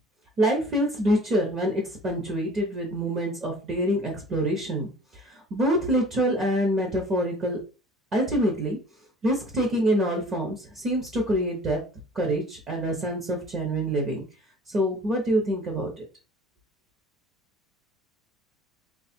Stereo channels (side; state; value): both; normal; correlation 0.47